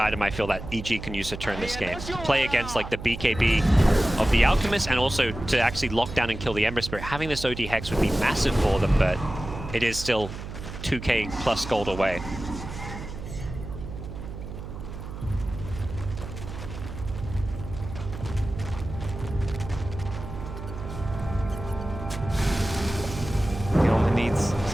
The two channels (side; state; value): right; noise; hum, 9 dB below the sound